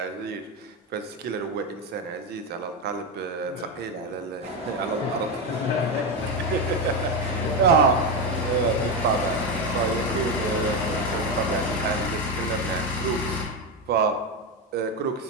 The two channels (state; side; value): normal; both; correlation 0.13